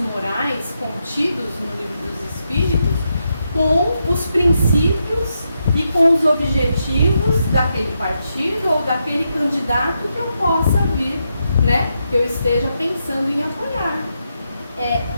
contidos no Livro dos Espíritos com os princípios e com os objetivos daquele partido ou daquele candidato que eu possa vir, né, que eu esteja pensando em apoiar. É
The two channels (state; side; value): inverted; both; correlation -0.83